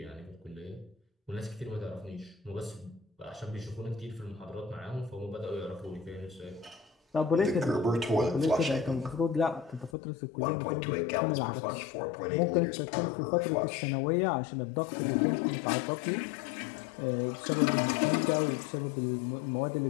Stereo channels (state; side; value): drops out; right; at 10.0 s